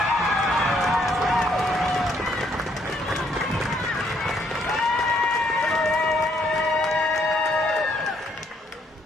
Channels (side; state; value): both; normal; correlation 0.69